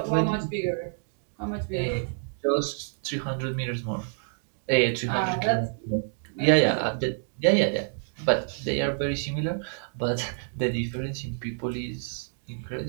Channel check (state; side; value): silent; left; digital silence